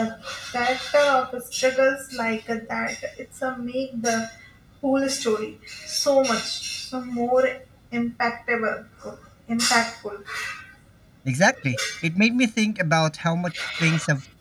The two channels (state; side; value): identical; both; correlation 1.00